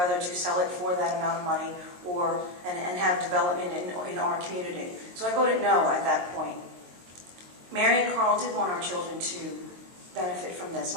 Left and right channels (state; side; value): late; left; 22 ms